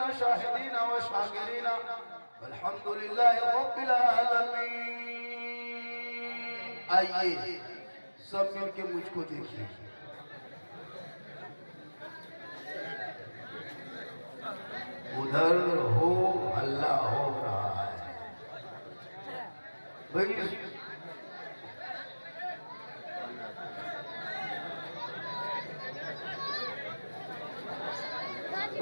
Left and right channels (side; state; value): both; inverted; correlation -1.00